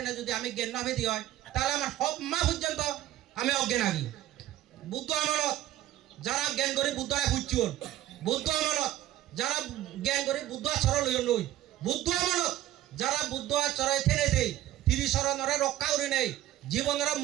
না যদি আমি জ্ঞান নভেদি হয় তাহলে আমার সব মা পর্যন্ত আমি অজ্ঞান আগি বুদ্ধ আমলত যারা জ্ঞান করে বুদ্ধরা খুঁজছুন বুদ্ধ আমলত যারা জ্ঞান করে বুদ্ধ আচরণ লই বুদ্ধ আমলত যারা বুদ্ধ আচরণ থেনে দেয় তিরিশরণরে রক্ষা করে নেই জীবনের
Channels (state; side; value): quieter; left; 13.8 dB